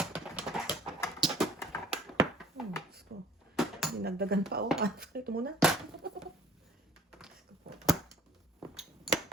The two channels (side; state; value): both; normal; correlation 0.54